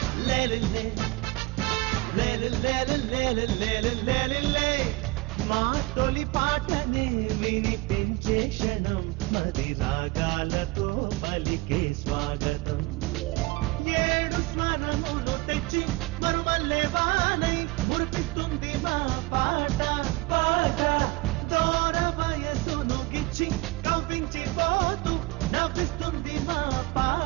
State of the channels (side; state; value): left; quieter; 21.3 dB